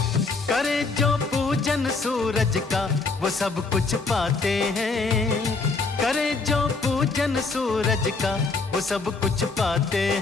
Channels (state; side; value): quieter; right; 4.0 dB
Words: करे जो पूजन सूरज का वो सब कुछ पाते हैं, करे जो पूजन सूरज का वो सब कुछ पाते